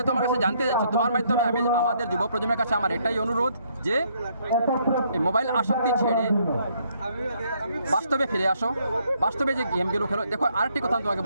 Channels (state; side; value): inverted; both; correlation -0.70